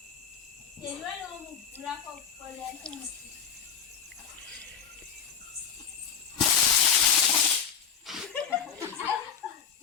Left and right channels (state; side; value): quieter; right; 7.3 dB